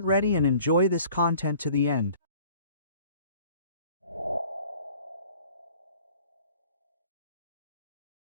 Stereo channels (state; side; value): inverted; both; correlation -0.51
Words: ready and enjoy this content to the end.